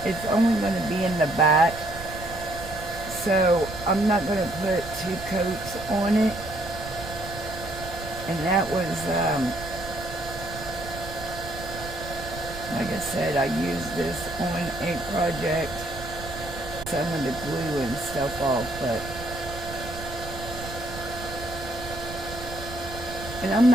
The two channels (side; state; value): right; noise; rumble, 12 dB below the sound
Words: only going to be in the back, so I'm not going to put 2 coats on it. And that was, like I said, I used this on a project. Some of the glue and stuff off, but And I'm